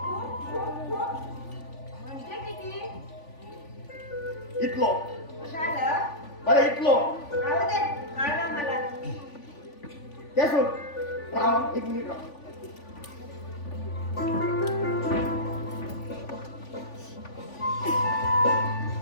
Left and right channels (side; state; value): right; late; 3.5 ms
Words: खूप खूप खूप म्हणजे किती. इतलो झालं बरें इतलो राहू दे कळलं मला. ते सोड राव 1 मिनिट राव.